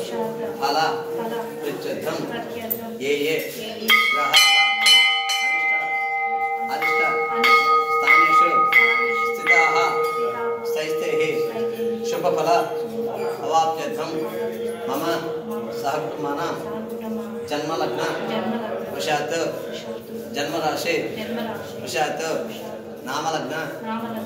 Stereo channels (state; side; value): identical; both; correlation 1.00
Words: Phala, Prichatham, Ye, Graha, Arishta, Staneshu, Stitaha, Staistehi, Shubhaphala, Avapyatham, Mama, Sahakutumana, Janma Lagna, Vashat, Janma Rashi, Vashat, Nama Lagna,